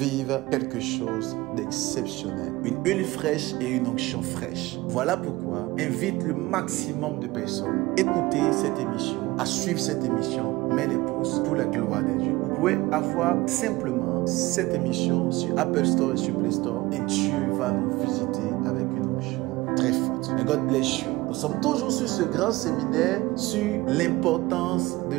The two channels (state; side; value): quieter; left; 20.1 dB